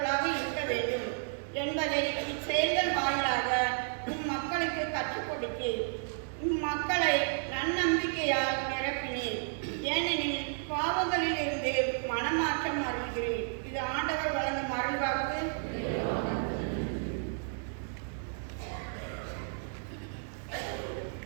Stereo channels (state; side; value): silent; left; digital silence